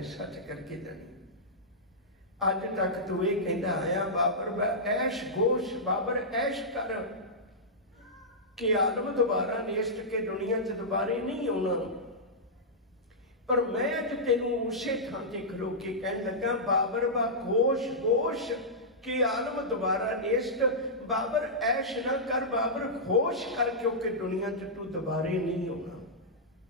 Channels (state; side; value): normal; both; correlation -0.13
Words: सच करके जानी। अज तक तू ये कहता आया बाबर ऐश गोश बाबर ऐश कर के आलम दोबारा नेस्त के दुनिया च दोबारे नहीं होना। पर मैं अज तेनू उसे थां ते खलो के कह लगा बाबर बा गोश गोश के आलम दोबारा नेस्त बाबर ऐश ना कर बाबर होश कर क्योंकि दुनिया च तू दोबारे नहीं होना।